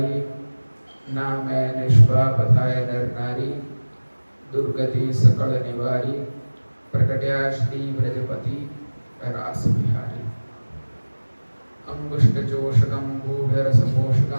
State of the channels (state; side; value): inverted; both; correlation -1.00